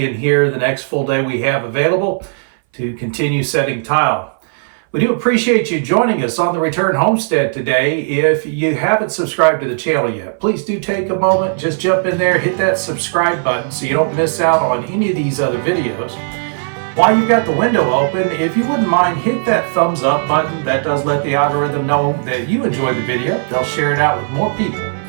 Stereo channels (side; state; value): left; silent; 62 dB below the other